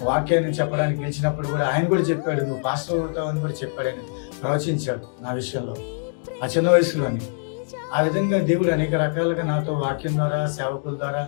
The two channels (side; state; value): right; silent; digital silence